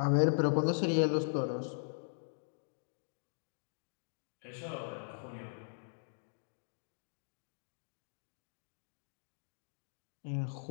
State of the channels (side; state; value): right; silent; digital silence